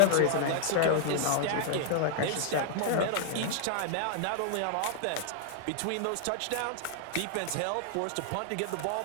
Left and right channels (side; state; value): both; different; correlation 0.00